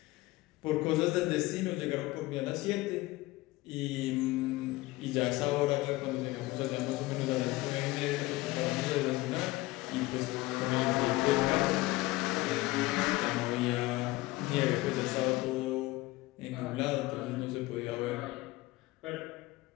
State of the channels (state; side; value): quieter; right; 19.8 dB